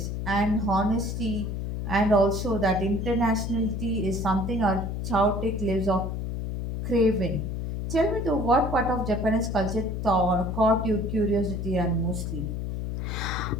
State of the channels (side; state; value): left; noise; hum, 3 dB below the sound